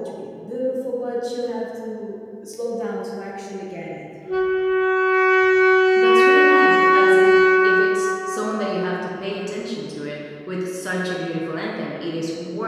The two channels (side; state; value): both; identical; correlation 1.00